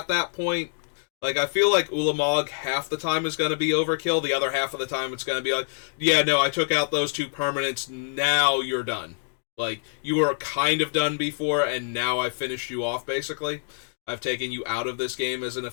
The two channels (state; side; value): silent; right; digital silence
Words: that point. Like, I feel like Ulamog half the time is going to be overkill, the other half of the time it's going to be like, yeah, no, I took out those 2 permanents, now you're done. Like, you were kind of done before, and now I've finished you off, basically. I've taken you out of this game as an